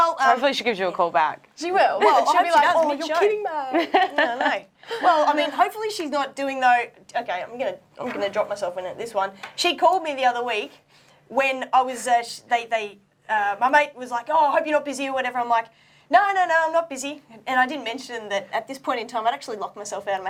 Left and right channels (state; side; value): identical; both; correlation 1.00